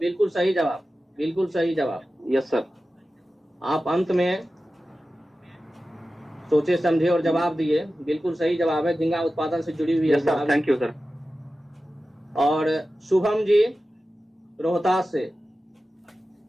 सही जवाब, बिल्कुल सही जवाब। Yes sir. आप अंत में सोचे समझे और जवाब दिए, बिल्कुल सही जवाब है, झींगा उत्पादन से जुड़ी हुई है यस सर, जवाब। Thank you sir. और शुभम जी रोहतास से,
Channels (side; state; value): both; normal; correlation 0.94